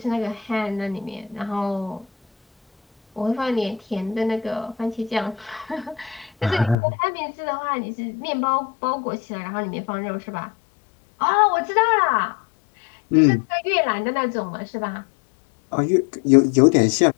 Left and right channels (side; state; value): right; drops out; at 6.8 s